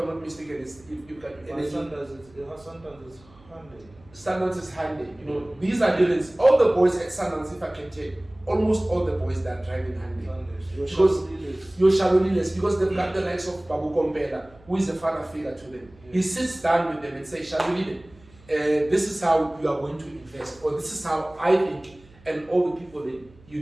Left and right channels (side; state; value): right; noise; hum, 26 dB below the sound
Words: not mistaken, you've got energy. Sometimes it's Hyundai. Sundance is Hyundai. You know, these are dealers. All the boys at Sundance, if I can tell, almost all the boys that are driving Hyundai. Because your Shaloliles, because they've got the likes of Babu Kompela, who is a father figure to them. He sits down with them and says, Shalolile, this is how you are going to invest, or this is how I think, and all the people that